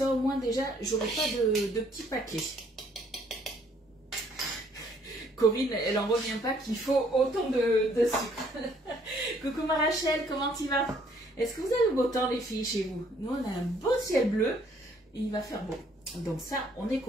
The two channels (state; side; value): normal; both; correlation 0.64